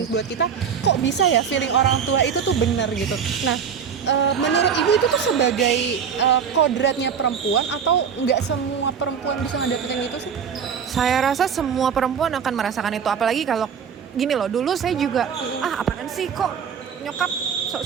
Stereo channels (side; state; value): left; quieter; 7.2 dB